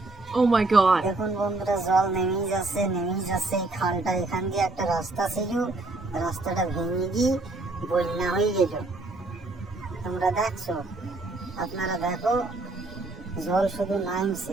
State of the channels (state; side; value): quieter; left; 3.1 dB